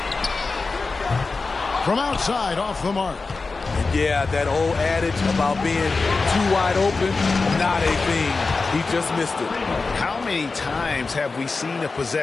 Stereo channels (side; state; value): right; quieter; 4.0 dB